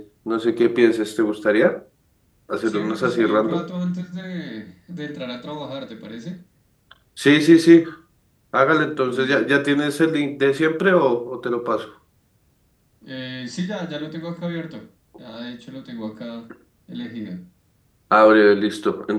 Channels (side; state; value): both; identical; correlation 1.00